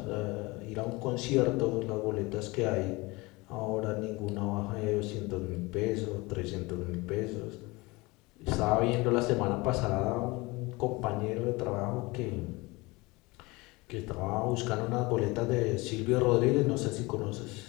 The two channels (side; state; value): right; quieter; 23.6 dB